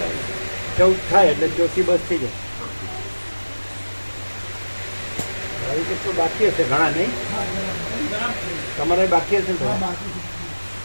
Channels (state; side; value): inverted; both; correlation -1.00